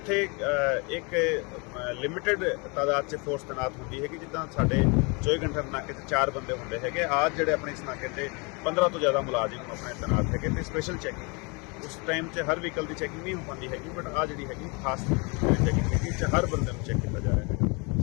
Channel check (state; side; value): quieter; right; 30.9 dB